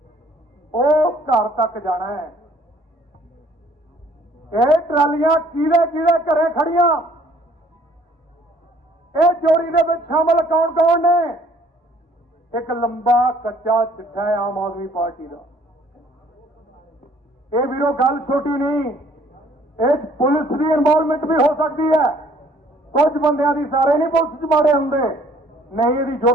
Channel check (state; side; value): normal; both; correlation 0.58